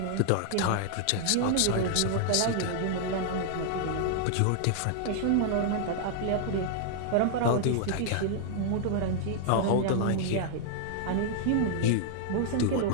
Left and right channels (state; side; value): different; both; correlation -0.01